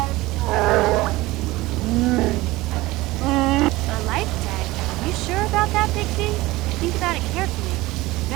A life tag. You sure about that, Big Z? Think about it carefully. You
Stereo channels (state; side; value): quieter; left; 19.5 dB